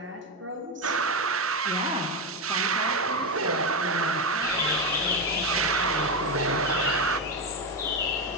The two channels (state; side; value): normal; both; correlation 0.11